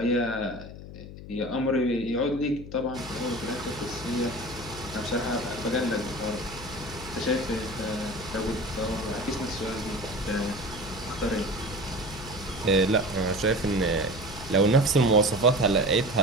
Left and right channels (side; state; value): left; noise; hum, 13 dB below the sound